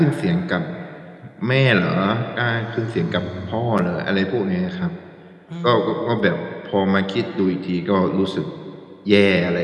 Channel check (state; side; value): identical; both; correlation 1.00